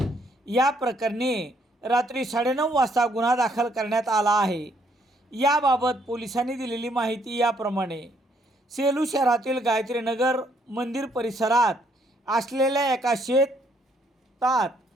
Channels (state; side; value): normal; both; correlation 0.69